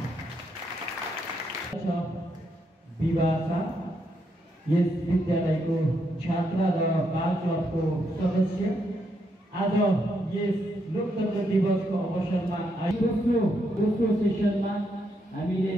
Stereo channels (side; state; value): both; normal; correlation 0.78